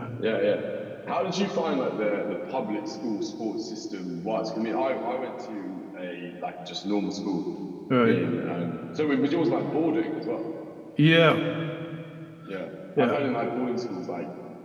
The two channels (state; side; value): identical; both; correlation 1.00